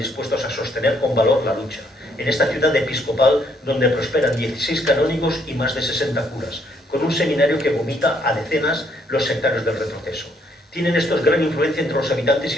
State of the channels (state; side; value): normal; both; correlation 0.70